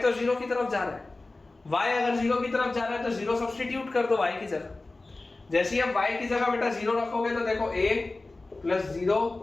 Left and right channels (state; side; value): quieter; right; 3.2 dB